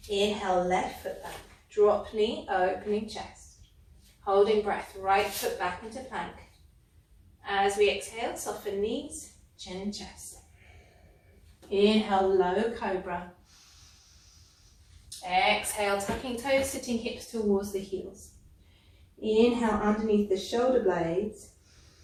Inhale, left foot back. Drop knee, opening chest. Holding breath, right foot back into plank. As we exhale, soften knees, chin, chest. Inhale, low cobra. Exhale, tucking toes, sitting hips towards the heels. Inhale, underneath the shoulder blades.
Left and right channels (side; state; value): both; identical; correlation 1.00